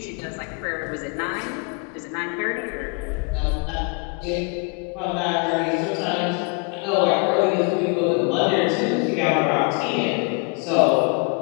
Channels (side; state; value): right; quieter; 35.9 dB